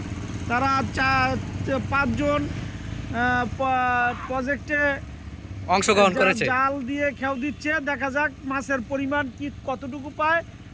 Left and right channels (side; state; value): both; identical; correlation 1.00